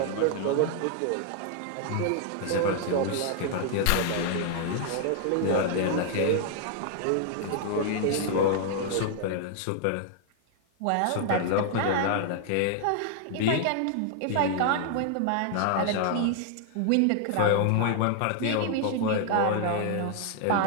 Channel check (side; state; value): both; different; correlation 0.00